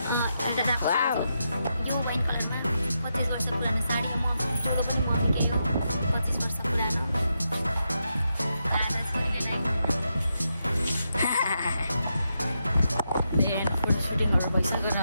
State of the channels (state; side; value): inverted; both; correlation -0.84